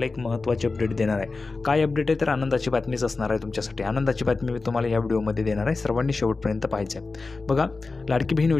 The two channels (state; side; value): quieter; right; 3.8 dB